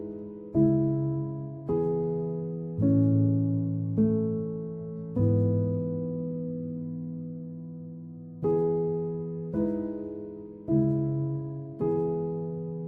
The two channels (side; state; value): both; identical; correlation 1.00